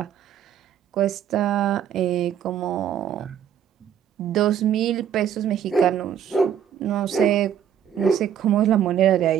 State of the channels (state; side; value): quieter; left; 9.2 dB